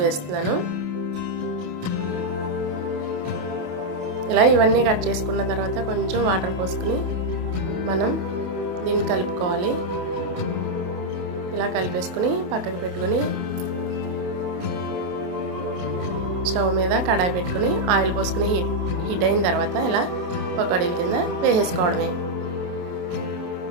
వేస్తున్నాను. ఇలా ఇవన్నీ కట్ చేసుకున్న తర్వాత కొంచెం వాటర్ పోసుకుని మనం దీన్ని కలుపుకోవాలి. ఇలా కలిపేసుకుని పక్కకు పెట్టుకుని స్టవ్ మీద కడాయి పెట్టుకుని ఆయిల్ పోసుకుని హీట్ అయిన తర్వాత ఇలా పకోడీల కింద వేసేసుకోవడమే.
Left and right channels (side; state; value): left; late; 28 ms